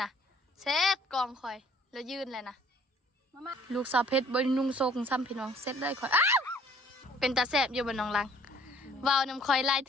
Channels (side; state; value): both; normal; correlation 0.57